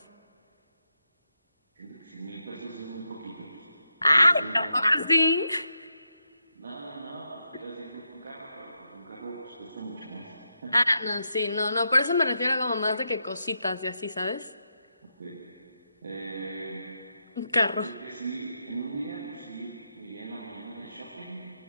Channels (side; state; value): both; inverted; correlation -0.84